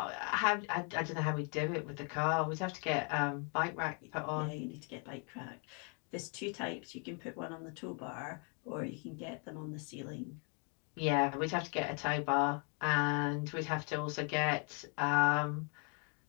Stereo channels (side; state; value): right; quieter; 37.6 dB